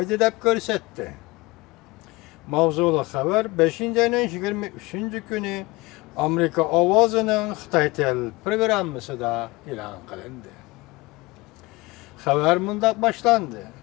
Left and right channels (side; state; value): right; quieter; 22.5 dB